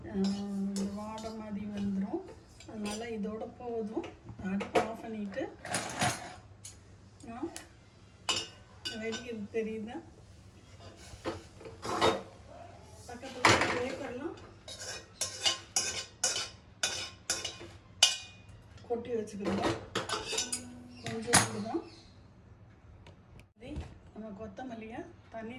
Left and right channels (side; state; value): both; identical; correlation 1.00